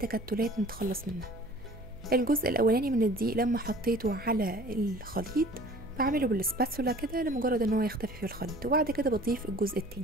نتخلص منها. الجزء الاولاني من الدقيق لما حطيته على الخليط بعمله بالسباتولا كده لمجرد ان هو يختفي في الخليط، وبعد كده بضيف الجزء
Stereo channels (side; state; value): right; noise; hum, 19 dB below the sound